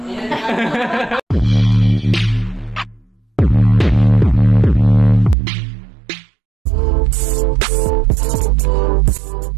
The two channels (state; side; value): drops out; left; at 5.4 s